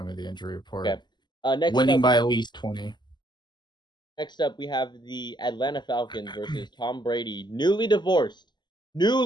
me the injury report. Okay. Next Winning up, by at least 20. Next up, we have the Atlanta Falcons versus Tom Brady, newly divorced.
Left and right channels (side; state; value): right; late; 0.21 ms